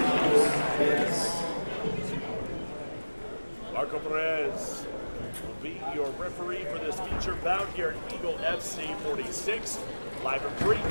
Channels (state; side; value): inverted; both; correlation -1.00